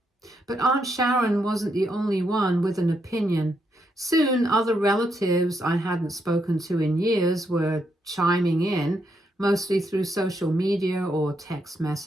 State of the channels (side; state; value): both; normal; correlation 0.79